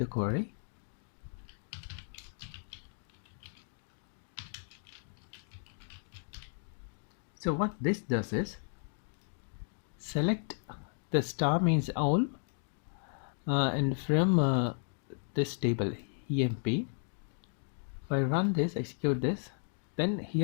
query. So what this does is select the star means all, and from this table emp, if I run this, execute this, then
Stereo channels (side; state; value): right; silent; digital silence